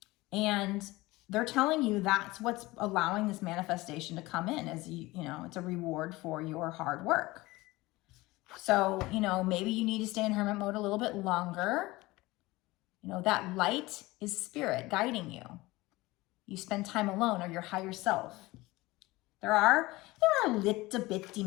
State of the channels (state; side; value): quieter; right; 20.4 dB